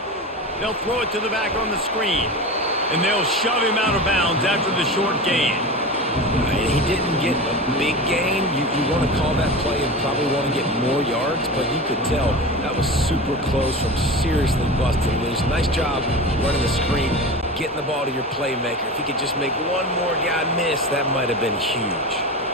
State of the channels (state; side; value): normal; both; correlation 0.28